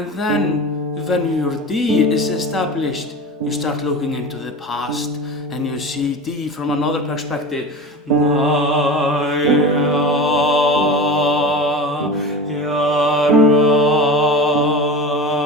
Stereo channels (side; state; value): both; normal; correlation 0.30